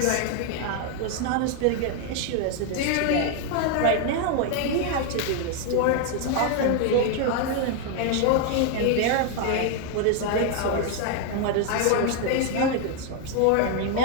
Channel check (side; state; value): both; different; correlation 0.00